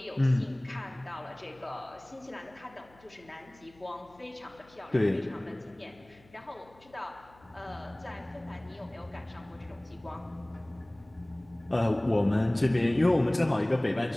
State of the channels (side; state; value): left; noise; hum, 27 dB below the sound